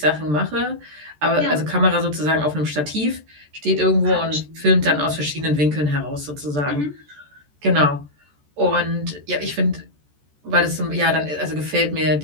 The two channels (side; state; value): left; late; 14 ms